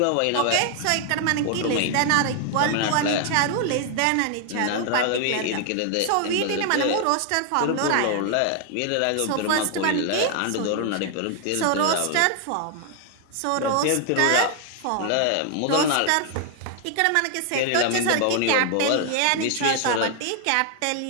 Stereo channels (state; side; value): different; both; correlation 0.00